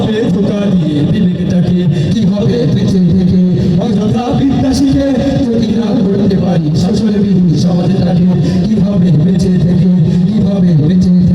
ধোকা দিয়ে বিবেকটাকে, কি হবে বেঁচে থেকে অযথা বিদ্যা শিখে যদি না করতে পারি শাসন বিধি সমাজটাকে। কি হবে বেঁচে থেকে, কি হবে বেঁচে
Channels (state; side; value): identical; both; correlation 1.00